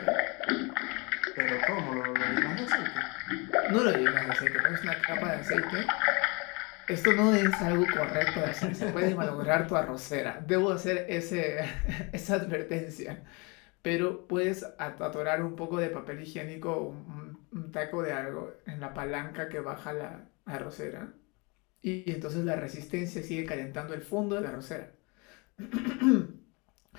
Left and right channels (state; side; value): quieter; right; 29.1 dB